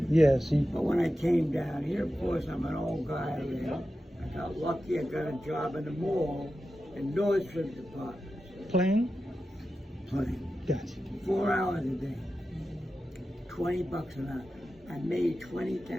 Yeah. See. But when I came down here, of course, I'm an old guy there. I got lucky. I got a job in the mall in Nordstrom department. Playing. Playing Gotcha. 4 hours a day, $20 an hour. I made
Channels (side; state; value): both; normal; correlation 0.92